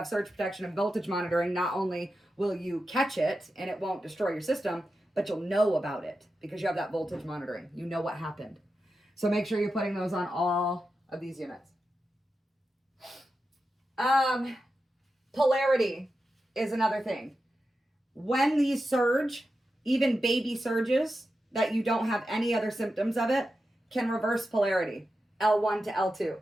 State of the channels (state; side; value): normal; both; correlation 0.90